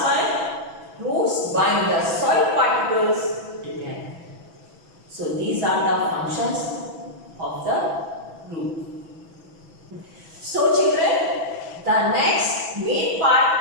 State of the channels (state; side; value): late; left; 6.1 ms